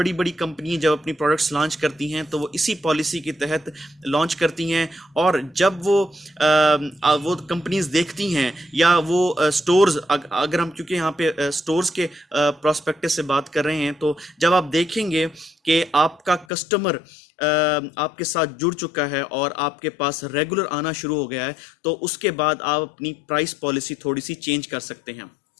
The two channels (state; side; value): drops out; right; at 16.4 s